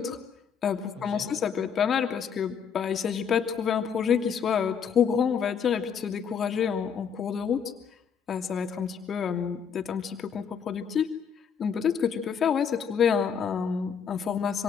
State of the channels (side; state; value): right; quieter; 7.1 dB